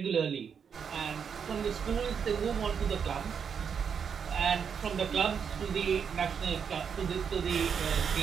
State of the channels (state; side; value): quieter; left; 6.9 dB